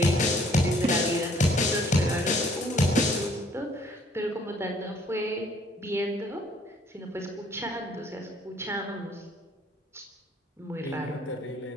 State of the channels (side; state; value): both; normal; correlation 0.61